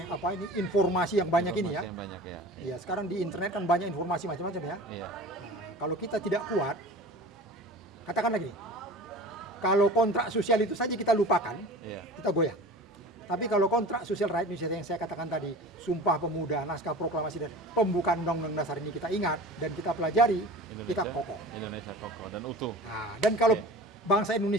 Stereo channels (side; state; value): both; normal; correlation 0.38